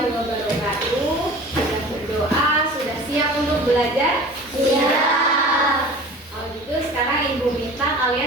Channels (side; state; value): both; normal; correlation 0.41